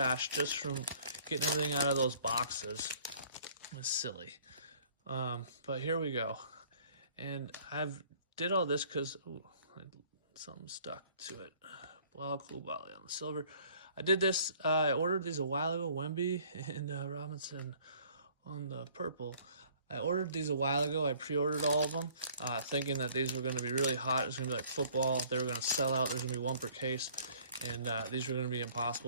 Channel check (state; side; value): inverted; both; correlation -0.56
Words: just from getting everything out of those boxes was silly. But here we go. And I've did all this because something stuck to it. Blah, cool Bali on the silver. I did this, I ordered these a while ago, Wemby and Robinson on the purple. I ordered these a while ago. I pre-ordered all of them, thinking that these were going to be really hot. It's going to be like football. They were going to sell out. There's going to be 1 per case. And these were going to be